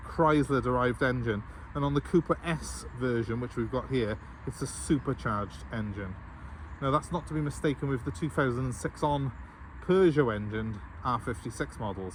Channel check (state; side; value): identical; both; correlation 1.00